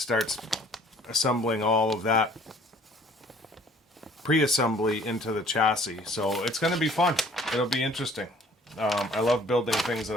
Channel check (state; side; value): normal; both; correlation 0.55